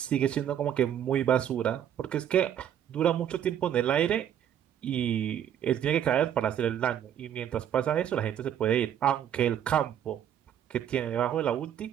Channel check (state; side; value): quieter; left; 9.9 dB